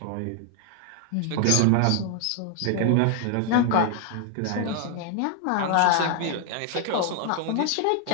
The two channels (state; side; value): different; both; correlation 0.00